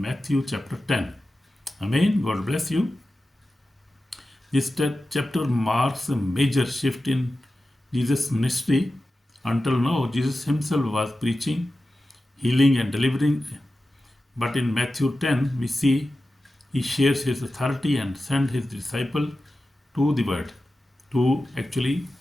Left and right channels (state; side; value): normal; both; correlation 0.93